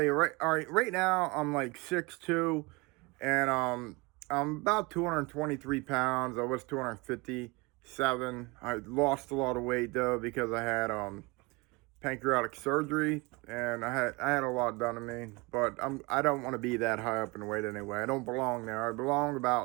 you all right, right now I'm like 6'2", and I'm about 223 pounds. I was 257. I lost a lot of weight though because I had pancreatic surgery, and I had a lot done to me. But I don't want to be that high up in weight anyway. I don't belong there. I belong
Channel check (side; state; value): left; quieter; 25.9 dB